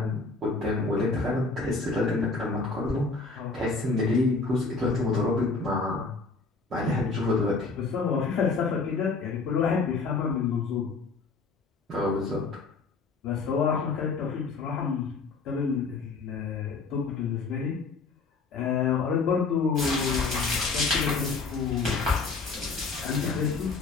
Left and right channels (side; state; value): right; quieter; 4.2 dB